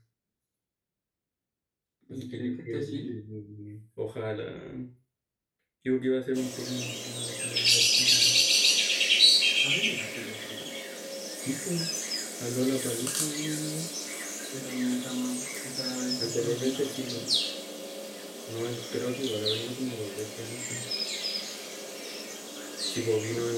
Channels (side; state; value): both; identical; correlation 1.00